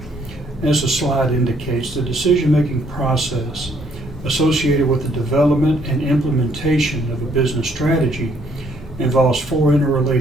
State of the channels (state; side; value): normal; both; correlation 0.66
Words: As the slide indicates, the decision-making process associated with the development and implementation of a business strategy involves four